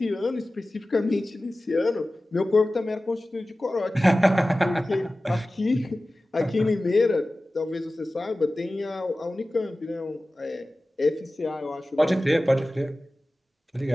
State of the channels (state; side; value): normal; both; correlation 0.96